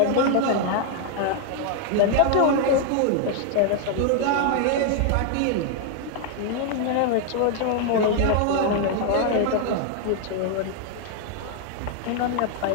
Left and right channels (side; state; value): both; different; correlation 0.00